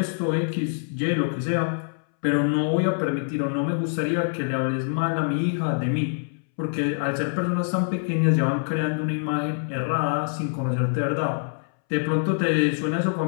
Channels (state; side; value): silent; right; 62 dB below the other